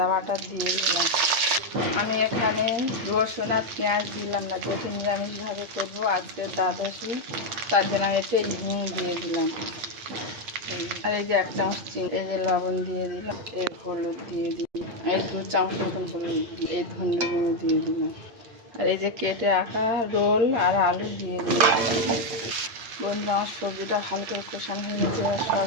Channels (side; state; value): left; late; 8.7 ms